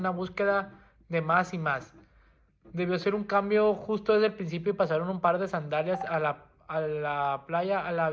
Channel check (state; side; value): identical; both; correlation 1.00